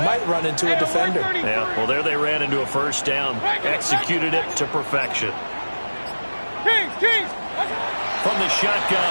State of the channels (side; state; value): both; inverted; correlation -1.00